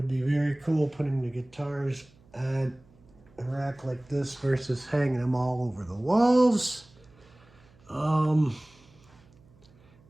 be very cool putting the guitars on a rack like this versus hanging them all over the walls.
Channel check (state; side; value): noise; right; hum, 28 dB below the sound